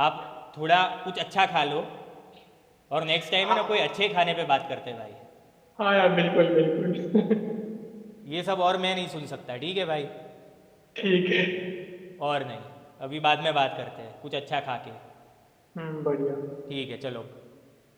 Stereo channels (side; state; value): both; identical; correlation 1.00